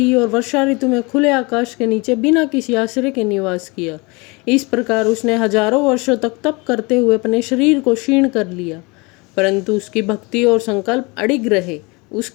और वर्षा ऋतु में खुले आकाश के नीचे बिना किसी आश्रय के निवास किया। इस प्रकार उसने हजारों वर्षों तक तप करते हुए अपने शरीर को क्षीण कर लिया, परंतु उसकी भक्ति और संकल्प अडिग रहे।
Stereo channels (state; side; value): quieter; right; 26.9 dB